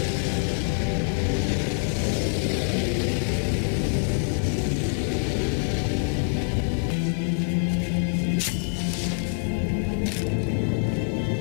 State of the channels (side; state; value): right; silent; digital silence